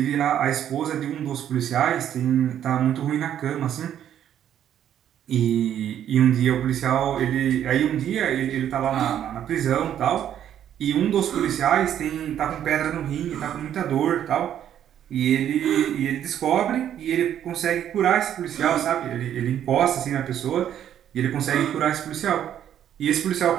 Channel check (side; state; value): left; quieter; 10.3 dB